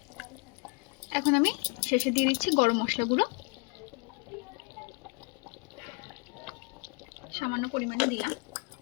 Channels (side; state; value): right; quieter; 31.6 dB